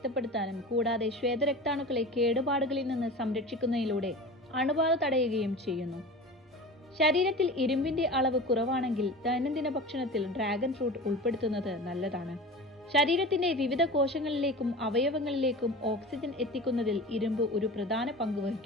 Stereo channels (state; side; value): normal; both; correlation 0.34